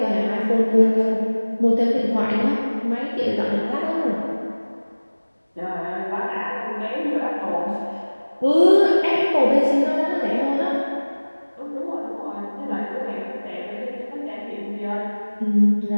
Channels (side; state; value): both; inverted; correlation -1.00